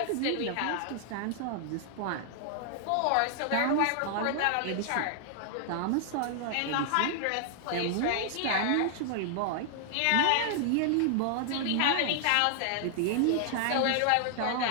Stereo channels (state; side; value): different; both; correlation -0.01